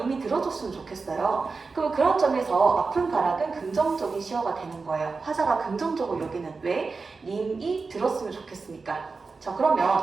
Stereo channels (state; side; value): quieter; left; 4.3 dB